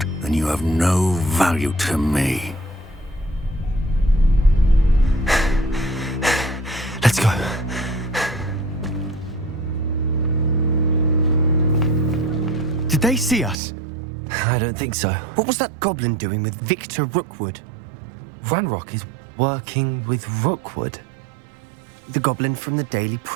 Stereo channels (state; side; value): drops out; left; at 13.6 s